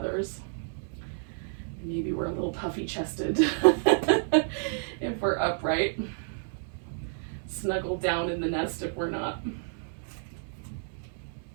Maybe we're a little puffy chested if we're upright. Snuggle down in the nest if we're not.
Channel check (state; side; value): silent; left; 58 dB below the other